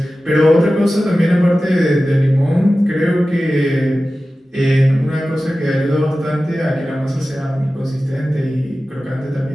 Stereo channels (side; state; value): both; normal; correlation 0.95